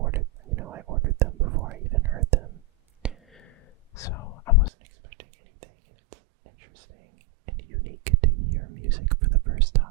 ordered them before I even heard them. So, I wasn't expecting anything, and it's interesting and unique to hear music for the first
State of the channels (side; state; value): left; drops out; at 4.7 s